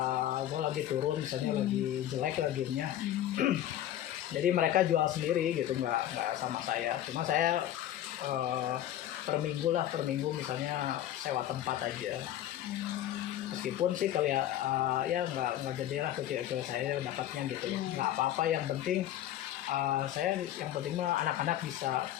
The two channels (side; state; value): right; quieter; 12.2 dB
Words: gol lagi turun, misalnya lagi jelek lah gamenya. Jadi mereka jual sendiri gitu, nggak sama saya. Cuma saya per minggu misalnya sewa tempat aja. Meskipun sih kali ya nggak gede lah ke saya dapatnya gitu, nggak apa-apa, yang penting saya yang penting mah anak-anak bisa